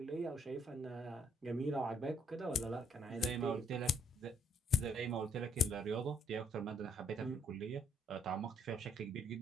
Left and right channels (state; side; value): normal; both; correlation 0.67